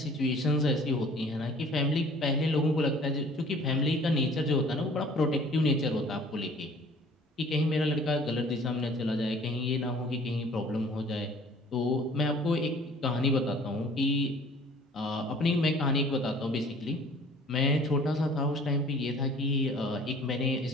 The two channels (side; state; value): both; normal; correlation 0.51